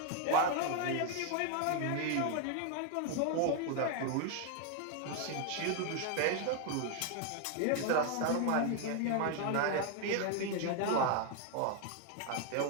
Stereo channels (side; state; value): both; different; correlation 0.00